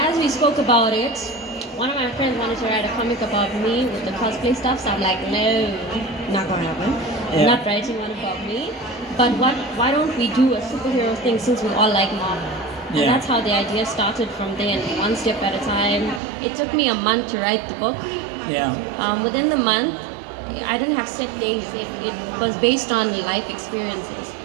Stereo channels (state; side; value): drops out; left; at 16.2 s